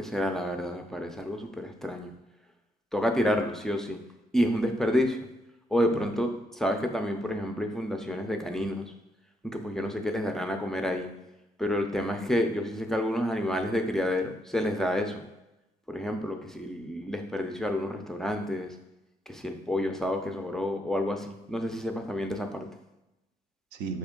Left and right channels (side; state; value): both; normal; correlation 0.77